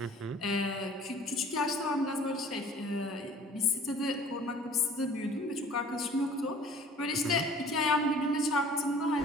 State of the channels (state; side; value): normal; both; correlation 0.50